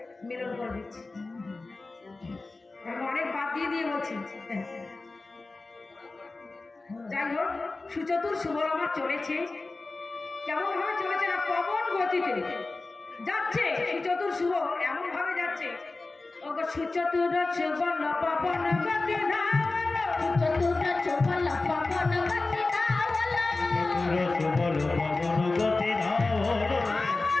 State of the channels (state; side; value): quieter; right; 3.4 dB